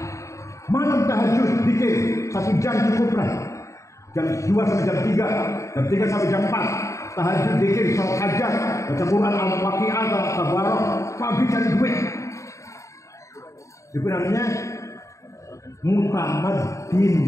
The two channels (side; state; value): right; late; 0.15 ms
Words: Malam tahajud, zikir 1 jam cukup lah. Jam 2 sampai jam 3, jam 3 sampai jam 4. Tahajud, zikir, salat hajat, baca Quran, al-waqi'ah, tabarok, pagi cari duit. Itu namanya mutamadin.